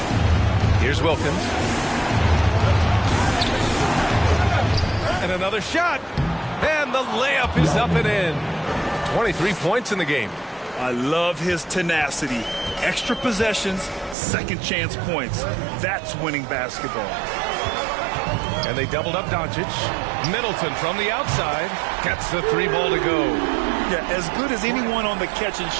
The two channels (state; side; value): drops out; left; at 14.2 s